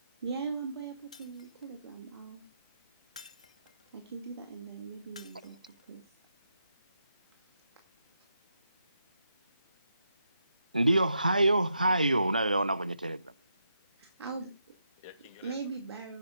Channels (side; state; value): both; inverted; correlation -0.83